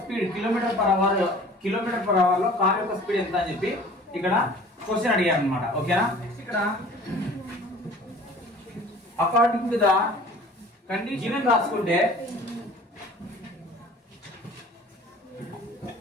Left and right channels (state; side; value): normal; both; correlation 0.47